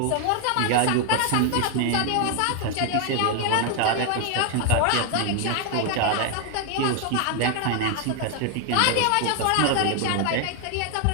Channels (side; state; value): both; different; correlation 0.00